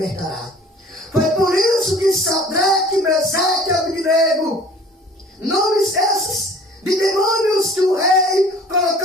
Foi por isso que Sadraque, Mesaque e Abednego, nomes esses de demônios que o rei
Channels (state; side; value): normal; both; correlation 0.49